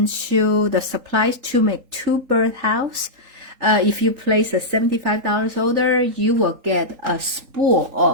you the supplies to make 2 birdhouse. If you place a $75 order, you will get a spool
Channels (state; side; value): late; left; 3.8 ms